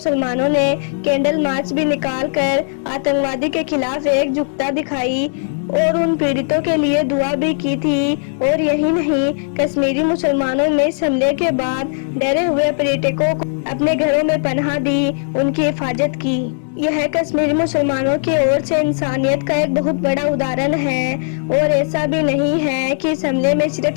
ने कैंडल मार्च भी निकाल कर आतंकवादी के खिलाफ एकजुटता दिखाई और उन पीड़ितों के लिए दुआ भी की थी। और यही नहीं, कश्मीरी मुसलमानों ने इस हमले के बाद डरे हुए पर्यटकों को अपने घरों में पनाह दी, उनकी हिफाजत की। यह कश्मीरी मुसलमानों की ओर से इंसानियत का एक बहुत बड़ा उदाहरण है। और ऐसा भी नहीं है कि इस हमले में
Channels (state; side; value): silent; right; digital silence